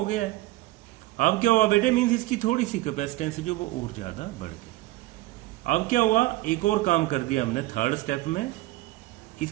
गया है। अब क्या हुआ बेटे, मीन्स इसकी थोड़ी सी कैपेसिटेंस जो वो और ज्यादा बढ़ गई। अब क्या हुआ, एक और काम कर दिया हमने थर्ड स्टेप में,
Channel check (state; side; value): quieter; left; 18.1 dB